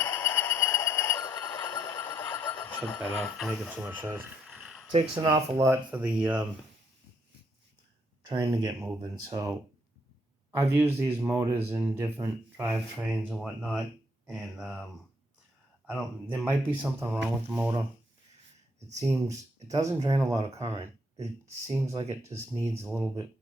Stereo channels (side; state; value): both; normal; correlation 0.72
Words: Shut that off, making too much noise. It takes an awful lot for the train to get moving. So I've used these motors in different drivetrains and whatnot, and there might be something wrong with the motor. It doesn't drain a lot of current. It seems like it just needs a little bit